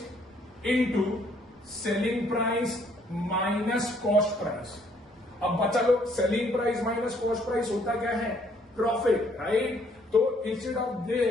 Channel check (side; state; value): both; normal; correlation 0.65